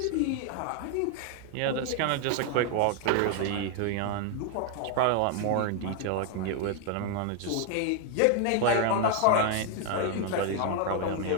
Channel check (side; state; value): both; different; correlation 0.00